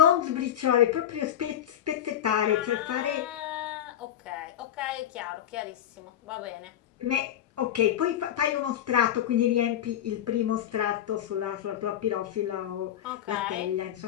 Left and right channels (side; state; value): right; quieter; 10.7 dB